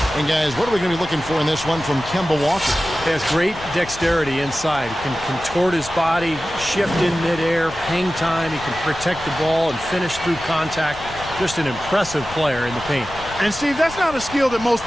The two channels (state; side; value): noise; left; rumble, 16 dB below the sound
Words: And guys, what are we going to be looking for in this one from Kemba Walker? He has great dexterity inside. He can contort his body, shift in midair, hang time. He can protect the ball and finish through contact. Just an impressive player in the paint. And Steve, that's not a skill that most